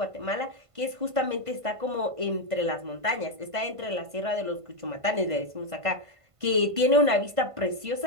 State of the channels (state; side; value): late; left; 1.5 ms